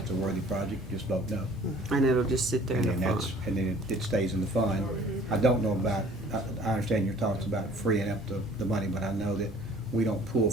a worthy project, just vote no. And it'll just sit there in And the then fund. and then it stays in the fund. I don't know about, I understand your talks about freeing up the money, but I know that we don't pull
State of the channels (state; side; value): normal; both; correlation 0.53